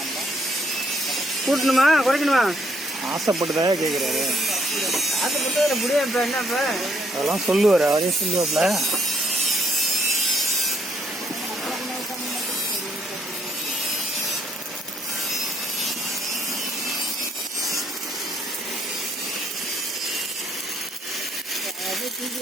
கூட்டணுமா குறைக்கணுமா? ஆசைப்பட்டுதான் கேட்குறாரு. ஆசைப்பட்டு முடியும். இப்போ என்னப்ப அதெல்லாம் சொல்லுவார், அவரே சொல்லுவாப்ல.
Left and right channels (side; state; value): both; normal; correlation 0.69